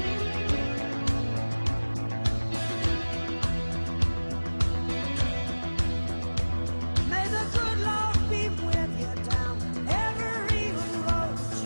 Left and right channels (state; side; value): inverted; both; correlation -1.00